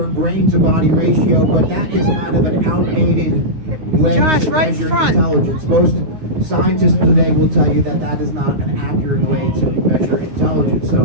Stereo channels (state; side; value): late; left; 9.6 ms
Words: brain-to-body ratio, but that is kind of an outdated way to measure intelligence. Most scientists today will tell you that that is not an accurate way to measure intelligence.